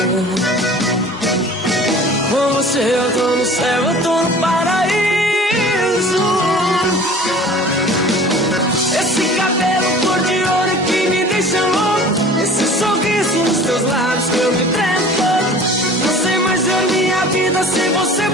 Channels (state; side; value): normal; both; correlation 0.44